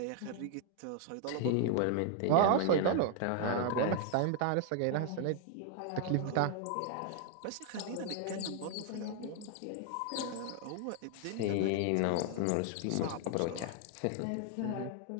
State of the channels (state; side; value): different; both; correlation 0.00